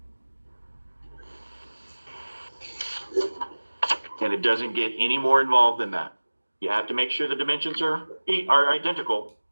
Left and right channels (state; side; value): inverted; both; correlation -1.00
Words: And it doesn't get any more involved than that. You have to make sure the dimensions are identical.